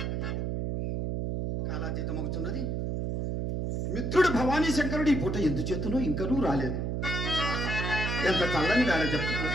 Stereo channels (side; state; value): right; noise; hum, 1 dB below the sound